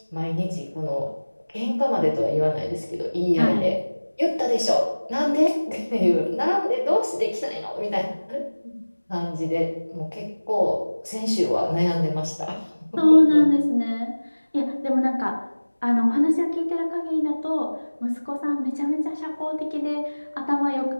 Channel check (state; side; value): inverted; both; correlation -1.00